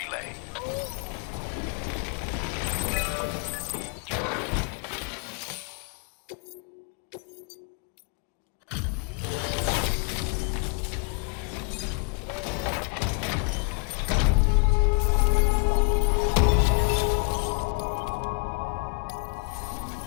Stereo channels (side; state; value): right; quieter; 36.9 dB